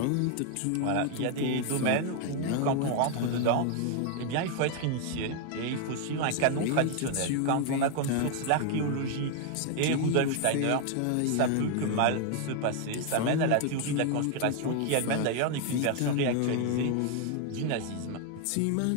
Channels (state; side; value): different; both; correlation 0.01